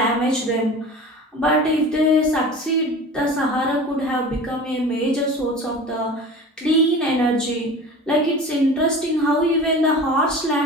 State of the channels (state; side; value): normal; both; correlation 0.37